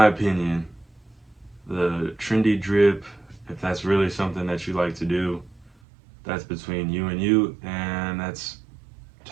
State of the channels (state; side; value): drops out; left; at 5.7 s